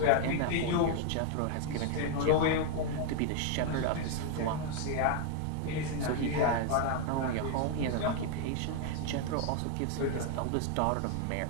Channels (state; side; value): different; both; correlation 0.00